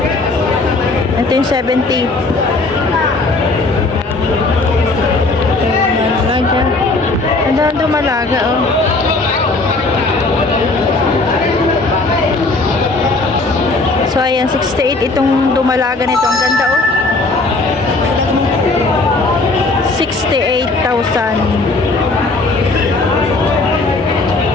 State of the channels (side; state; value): right; quieter; 3.3 dB